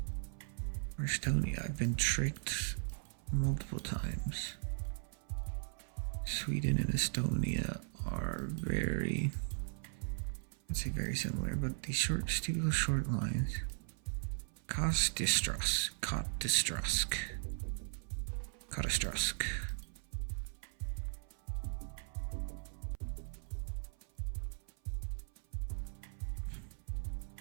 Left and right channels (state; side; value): silent; left; 52 dB below the other